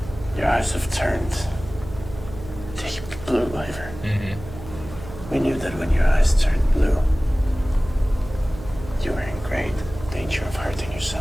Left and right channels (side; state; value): right; noise; hum, 14 dB below the sound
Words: Your eyes have turned deep blue, Ivor. We knew that when your eyes turned blue. great danger of hurting